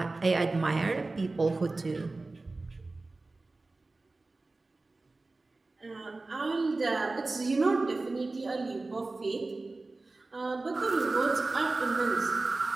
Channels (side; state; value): left; quieter; 3.3 dB